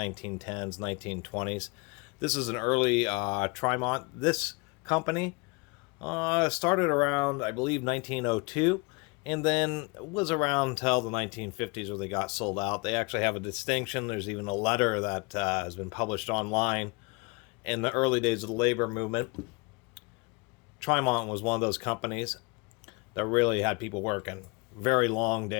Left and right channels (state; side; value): quieter; right; 29.2 dB